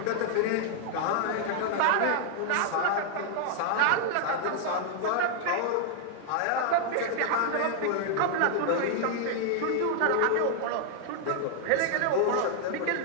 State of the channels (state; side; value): different; both; correlation 0.00